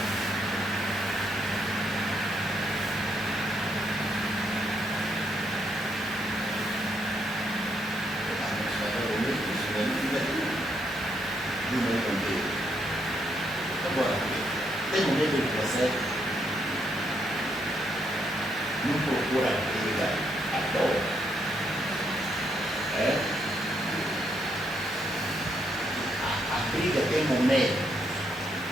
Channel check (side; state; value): both; normal; correlation 0.76